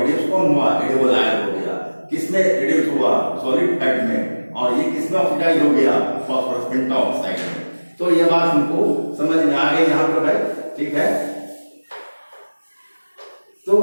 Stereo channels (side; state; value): both; inverted; correlation -1.00